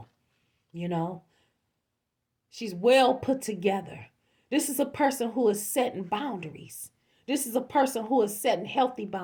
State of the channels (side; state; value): both; identical; correlation 1.00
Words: She's well put together. This is a person who is setting boundaries. This is a person who is setting healthy